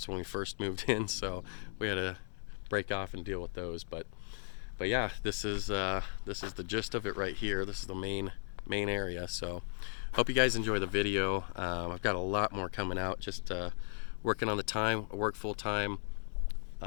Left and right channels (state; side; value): silent; right; digital silence